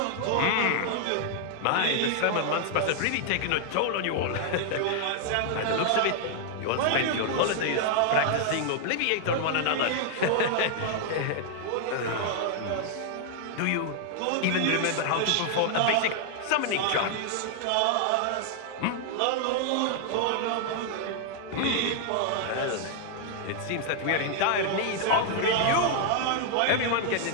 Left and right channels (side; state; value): both; different; correlation 0.00